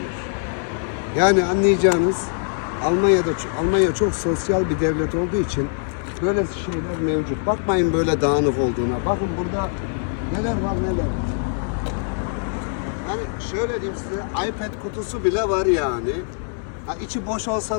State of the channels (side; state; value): right; silent; 64 dB below the other